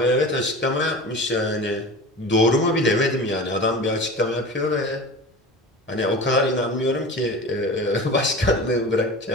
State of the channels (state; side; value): normal; both; correlation 0.33